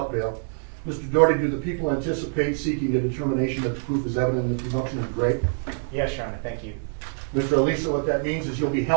bail. Mr. Doherty, do the people anticipate seeking the determination that the proof is evident and the presumption is great? Yes, Your Honor. Thank you. Mr. Alissa, what that means is you'll be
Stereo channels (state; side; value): silent; left; 62 dB below the other